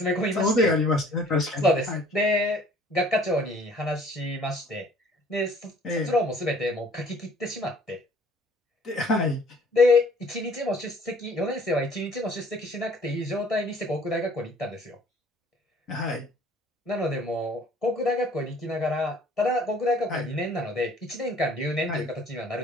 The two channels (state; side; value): normal; both; correlation 0.55